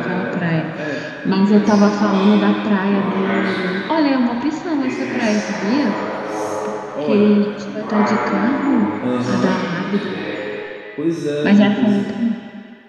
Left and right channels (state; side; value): identical; both; correlation 1.00